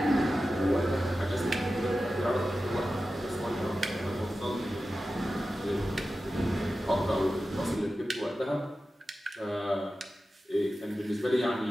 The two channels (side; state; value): both; normal; correlation 0.93